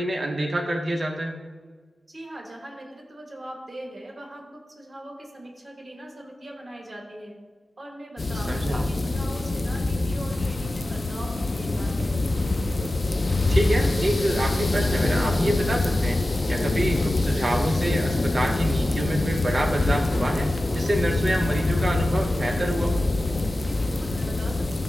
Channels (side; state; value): both; normal; correlation 0.94